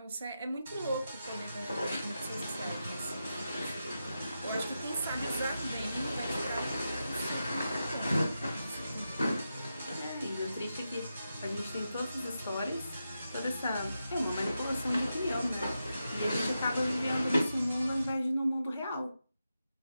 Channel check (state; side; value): inverted; both; correlation -0.88